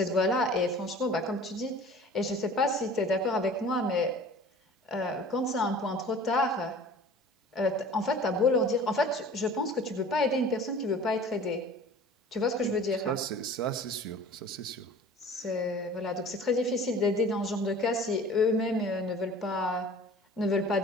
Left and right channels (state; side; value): normal; both; correlation 0.44